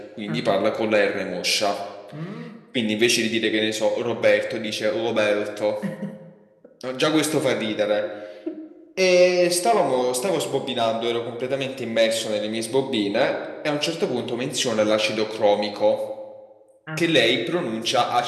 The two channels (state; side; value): identical; both; correlation 1.00